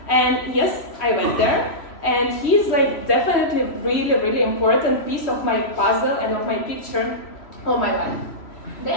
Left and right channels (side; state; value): right; late; 3.1 ms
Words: And yes, I went there, and he's like definitely really, really important piece of my puzzle and of my picture of my life.